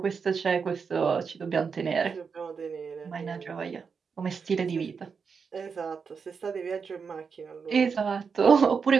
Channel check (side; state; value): left; quieter; 5.8 dB